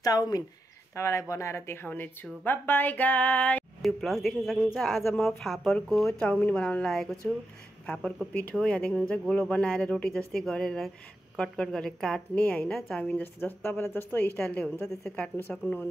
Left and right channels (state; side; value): normal; both; correlation 0.87